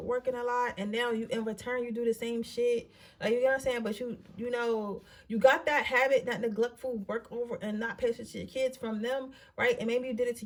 a lot, and now you, in return, you do the same shit. Like, you know what I'm saying? But you got that habit, that neglectful work over and not pay attention to your kids from them, right? And maybe you did it to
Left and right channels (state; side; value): identical; both; correlation 1.00